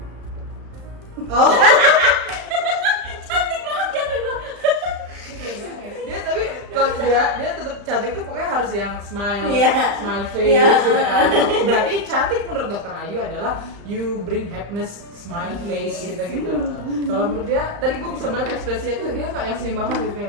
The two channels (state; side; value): late; left; 35 ms